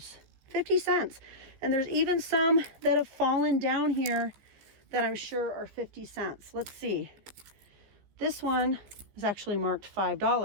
50 cents. And there's even some that have fallen down here that I'm sure are 50 cents. Let's see. This one is actually marked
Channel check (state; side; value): late; left; 15 ms